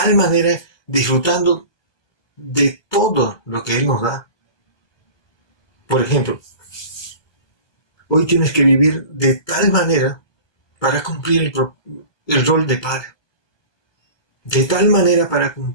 manera, disfrutando de todo lo que Él nos da. Por ejemplo, hoy tienes que vivir de tal manera para cumplir el rol de padre. De tal manera para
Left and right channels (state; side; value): late; right; 1.2 ms